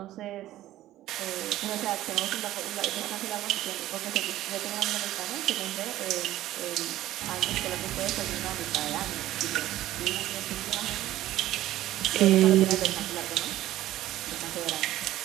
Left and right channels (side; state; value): left; quieter; 14.6 dB